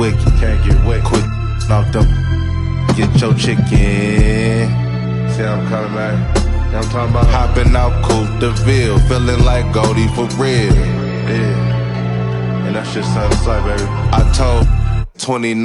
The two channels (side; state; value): both; identical; correlation 1.00